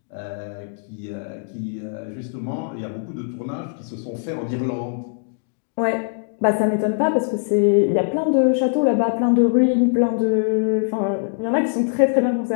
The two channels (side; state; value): right; silent; digital silence